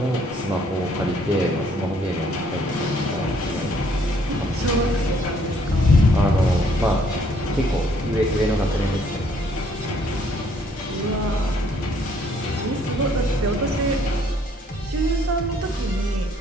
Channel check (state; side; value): normal; both; correlation 0.65